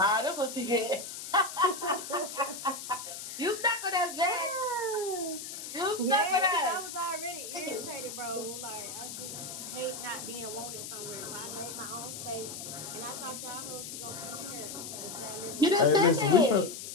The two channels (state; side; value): noise; left; hiss, 8 dB below the sound